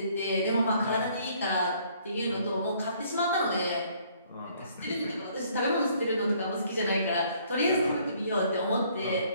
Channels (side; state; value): both; inverted; correlation -0.62